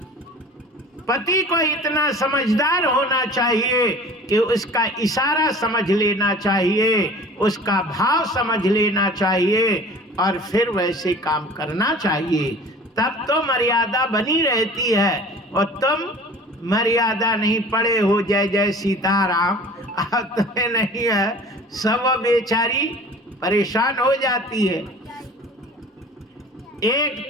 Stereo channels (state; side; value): normal; both; correlation 0.44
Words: पति को इतना समझदार होना चाहिए कि उसका इशारा समझ लेना चाहिए, उसका भाव समझ लेना चाहिए और फिर वैसे काम करना चाहिए, तब तो मर्यादा बनी रहती है। और तुम मर्यादा नहीं पड़े हो, जय जय सीताराम, अब तुम्हें नहीं है, सब बेचारी परेशान हो जाती है।